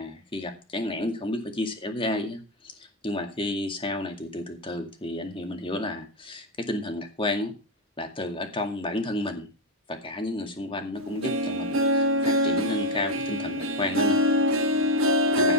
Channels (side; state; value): both; normal; correlation 0.07